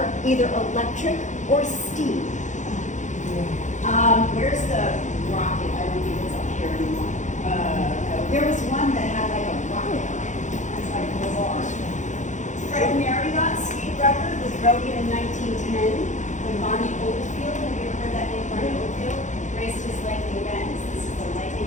either electric or steam. Where's the rocket? I don't think it's up here anymore. There was one that had like a rocket on it. It's like bizarre. Fred Marriott speed record was broken in 1910 when Bonnie Oldfield, have you ever heard that name, Bonnie Oldfield, raced his lightning Benz. This is the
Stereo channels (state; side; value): late; right; 0.35 ms